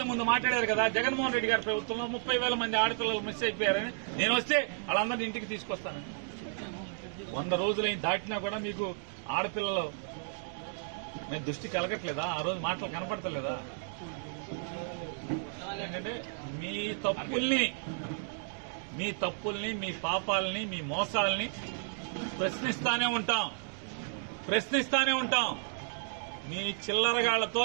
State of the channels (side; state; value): left; silent; digital silence